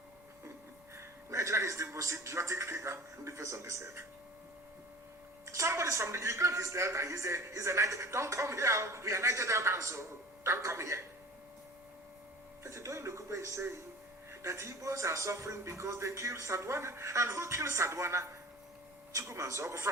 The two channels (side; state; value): both; normal; correlation 0.40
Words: Nigeria is the most idiotic thing in the face of this earth. Somebody's from the Ukraine, he's Delta, he's a Niger. Don't come here, we are Niger Delta, so don't come here. But Doyin Okupe is saying that Igbos are suffering because they killed Sadwana. And who killed Sadwana? Chukwumanzogu.